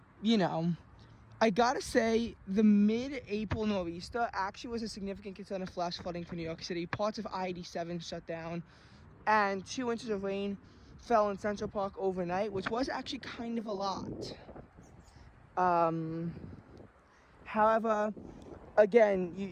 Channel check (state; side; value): identical; both; correlation 1.00